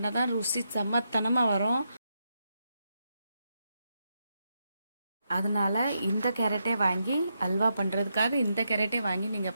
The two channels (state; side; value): inverted; both; correlation -0.83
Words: தான் ருசி செம்மத்தனமாக வரும். அதனால் இந்த கேரட்டே வாங்கி அல்வா பண்ணுறதுக்காக இந்த கேரட்டே வாங்கி